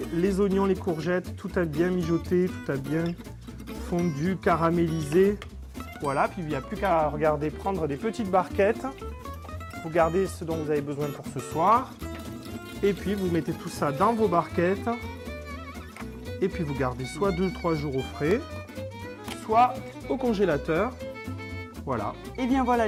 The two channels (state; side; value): identical; both; correlation 1.00